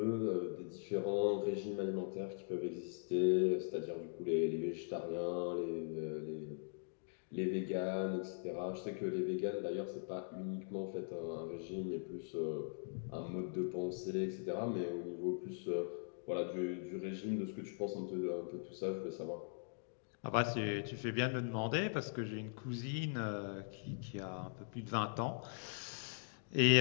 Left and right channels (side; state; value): right; silent; digital silence